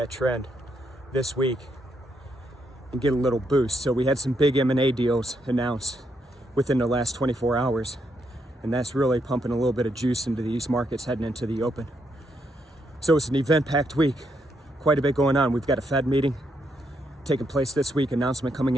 trend this week and get a little boost. So we had some big M&A deals announced within the last 24 hours. And that's really pumping a little bit of juice into these markets heading into the open. So it's an event-packed week. Quite a bit going on. We've got a Fed meeting taking place this week, announcement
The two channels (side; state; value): both; normal; correlation 0.78